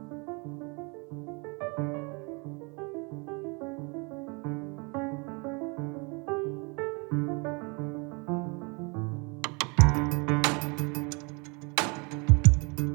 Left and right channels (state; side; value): quieter; left; 31.3 dB